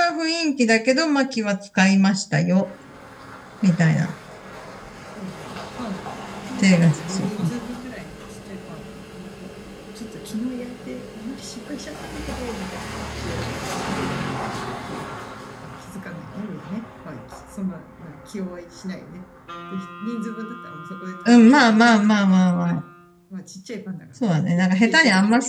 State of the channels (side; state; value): both; identical; correlation 1.00